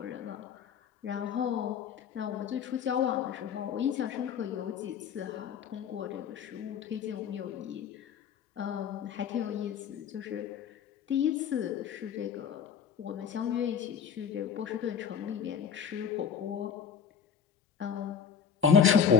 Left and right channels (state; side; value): quieter; right; 7.5 dB